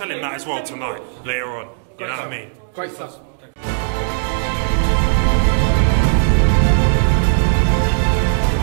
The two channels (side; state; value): left; silent; digital silence